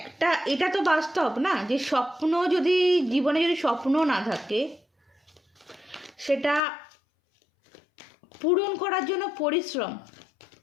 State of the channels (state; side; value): drops out; right; at 6.6 s